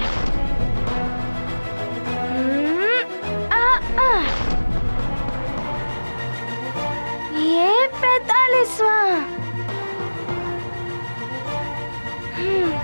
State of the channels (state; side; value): inverted; both; correlation -1.00